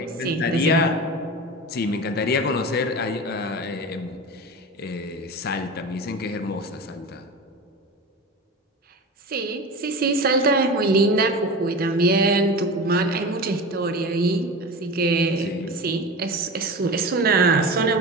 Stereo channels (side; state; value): both; normal; correlation 0.29